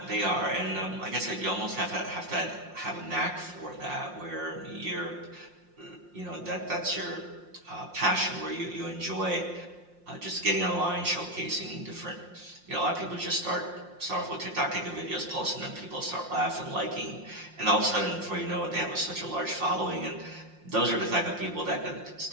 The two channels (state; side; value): late; left; 5.6 ms